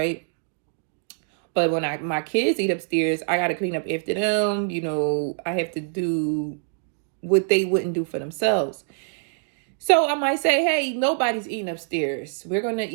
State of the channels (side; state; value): left; silent; digital silence